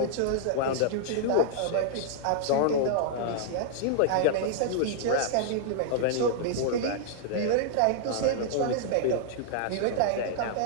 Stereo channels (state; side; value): different; both; correlation -0.01